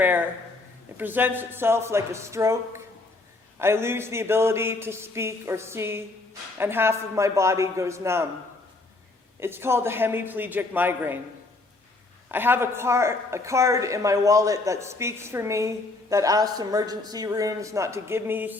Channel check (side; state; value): right; quieter; 3.2 dB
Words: It presents itself like a stroke. I lose the ability to speak or see, and half of my body goes numb. It's called a hemiplegic migraine. I have a card in my wallet that speaks for me, that asks emergency rooms not to give me